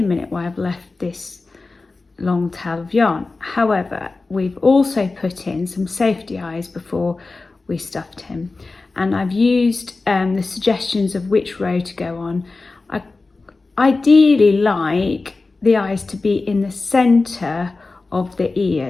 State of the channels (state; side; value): quieter; right; 3.6 dB